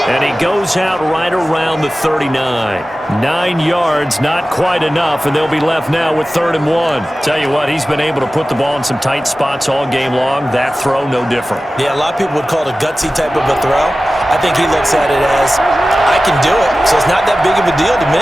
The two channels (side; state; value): both; normal; correlation 0.96